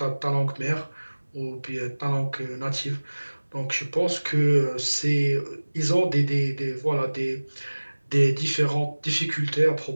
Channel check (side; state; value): both; inverted; correlation -1.00